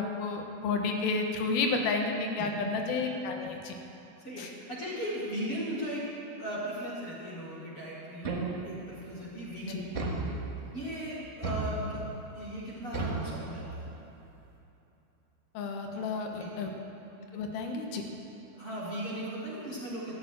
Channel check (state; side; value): late; right; 12 ms